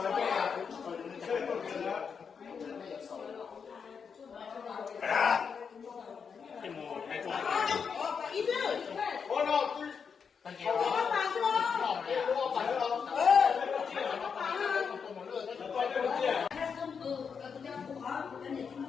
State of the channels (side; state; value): right; quieter; 6.2 dB